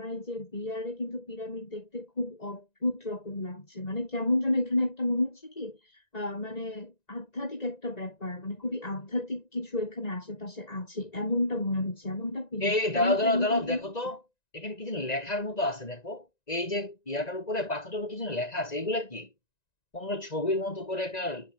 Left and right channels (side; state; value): right; late; 1.9 ms